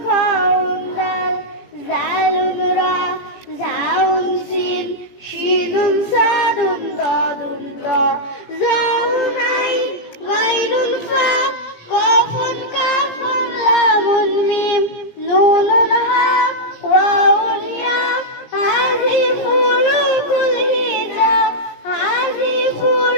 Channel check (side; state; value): right; late; 17 ms